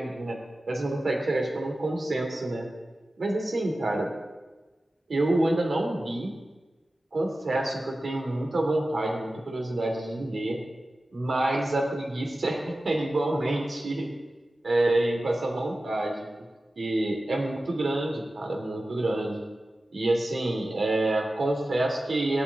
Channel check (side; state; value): both; normal; correlation 0.95